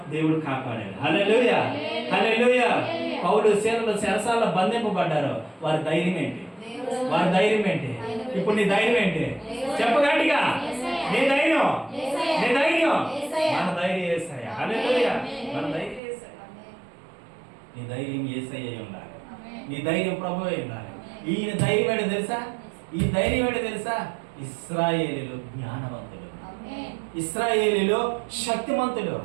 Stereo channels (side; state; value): left; drops out; at 16.0 s